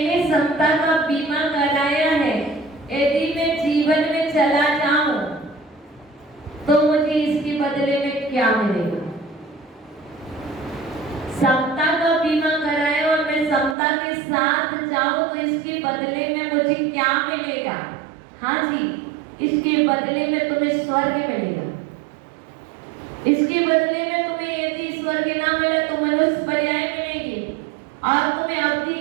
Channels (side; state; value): left; drops out; at 13.8 s